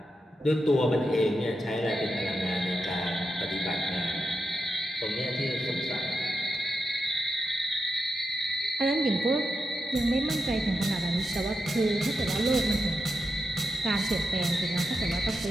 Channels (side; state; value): both; normal; correlation 0.87